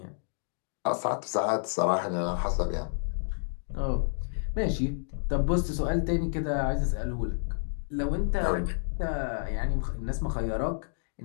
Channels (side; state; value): right; silent; digital silence